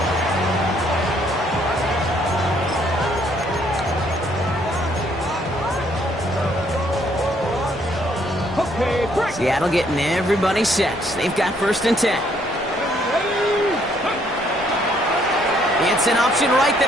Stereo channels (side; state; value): both; normal; correlation 0.67